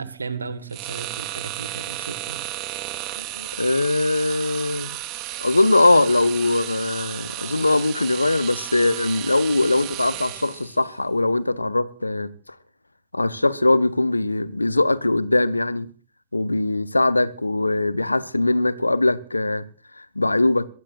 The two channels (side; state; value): both; inverted; correlation -0.93